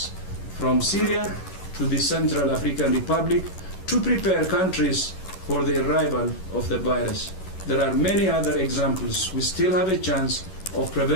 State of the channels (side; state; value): right; late; 11 ms